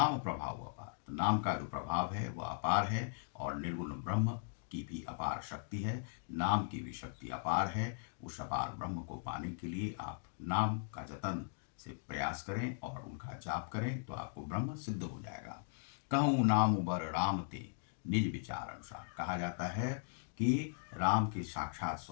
प्रभाव अपार, तो नाम का जो प्रभाव है वह अपार है और निर्गुण ब्रह्म की भी अपार शक्ति है, नाम की भी शक्ति अपार है। उस अपार ब्रह्म को पाने के लिए आप नाम का जतन से प्रयास करें और उनका जाप करें, तो आपको ब्रह्म सिद्ध हो जाएगा। कहूँ नाम बर राम ते निज विचार अनुसार, कहा जाता है कि राम के साक्षात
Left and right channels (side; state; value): right; silent; digital silence